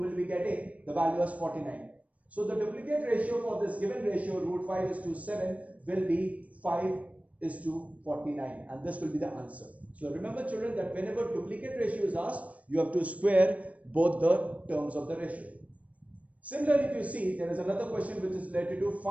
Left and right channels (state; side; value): late; left; 0.068 ms